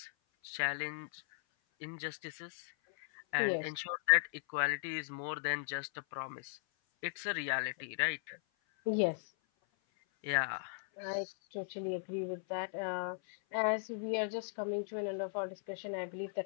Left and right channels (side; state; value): right; silent; 53 dB below the other